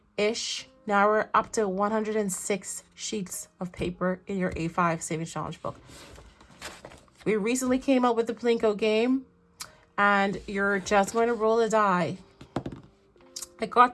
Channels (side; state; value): both; identical; correlation 1.00